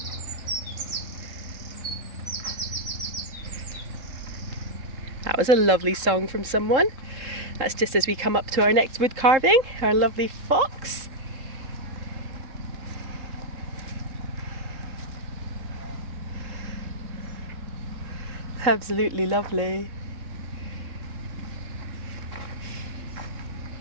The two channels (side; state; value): left; late; 3.8 ms